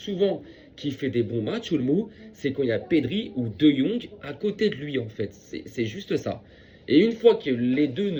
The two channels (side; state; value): both; identical; correlation 1.00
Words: qu'il fait des bons matchs, Olmo, c'est quand il y a Pedri ou De Jong à côté de lui, en fait. C'est juste ça. Et une fois que les deux